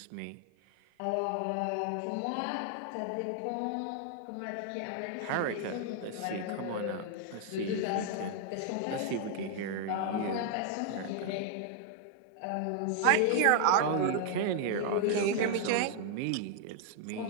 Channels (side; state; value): both; different; correlation 0.00